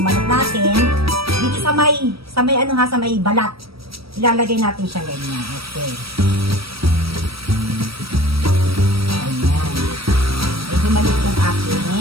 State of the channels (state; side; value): late; left; 0.76 ms